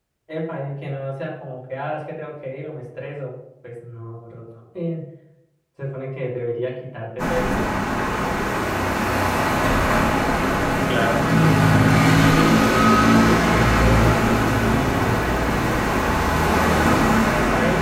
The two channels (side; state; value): both; identical; correlation 1.00